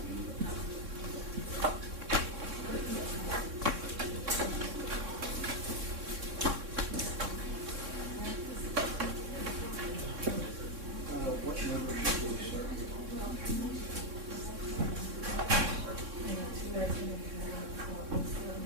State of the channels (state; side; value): late; left; 3.6 ms